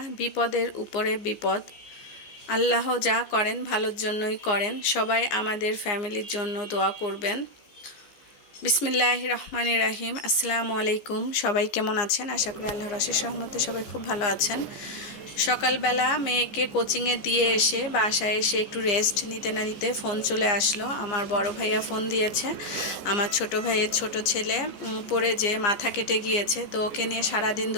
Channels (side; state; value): right; late; 15 ms